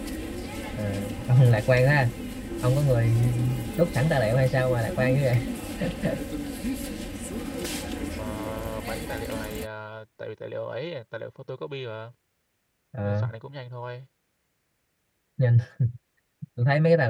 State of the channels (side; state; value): both; identical; correlation 1.00